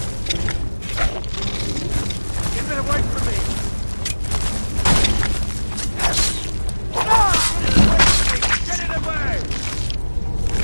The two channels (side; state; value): both; inverted; correlation -1.00